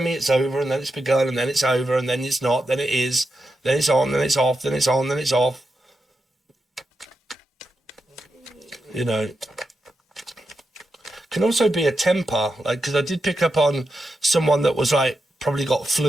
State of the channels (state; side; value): normal; both; correlation 0.87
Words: me it's over and then it's begun and then it's over and then it's not, then it is, then it's on, then it's off, then it's on, then it's off. You know, can also be a temper, like, because I did pick up on someone that was like, probably got